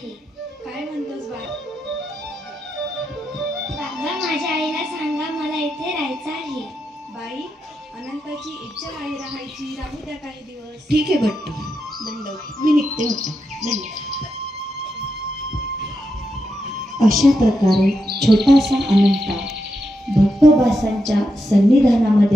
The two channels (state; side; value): normal; both; correlation 0.85